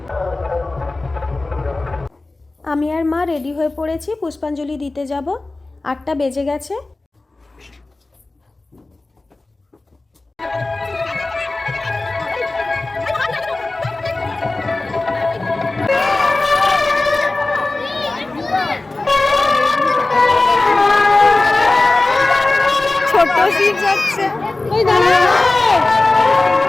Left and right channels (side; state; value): right; quieter; 3.1 dB